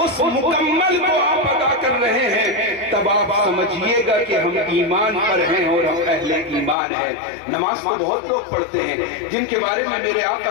مکمل کو آپ ادا کر رہے ہیں، تب آپ سمجھیے گا کہ ہم ایمان پر ہیں اور ہم اہل ایمان ہیں۔ نماز تو بہت لوگ پڑھتے ہیں، جن کے بارے میں میرے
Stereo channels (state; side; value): drops out; right; at 6.8 s